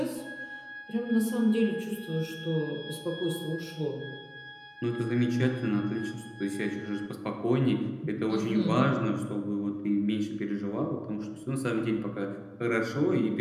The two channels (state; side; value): identical; both; correlation 1.00